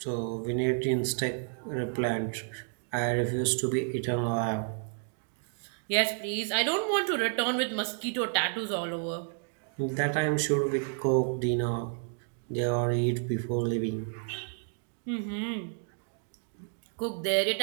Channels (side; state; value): left; silent; 57 dB below the other